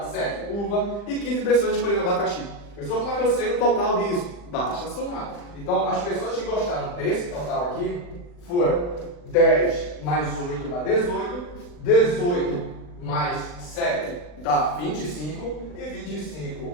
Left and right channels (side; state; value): right; late; 40 ms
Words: 7 uva e 15 pessoas escolheram abacaxi. Pessoal, como é que eu sei o total disso? Basta somar. Então, as pessoas que gostaram desse total aqui foram 10 mais 8 dá 18, 18 mais 7 dá 25 e